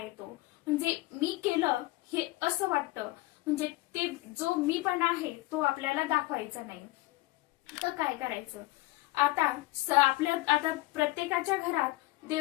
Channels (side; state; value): right; quieter; 20.3 dB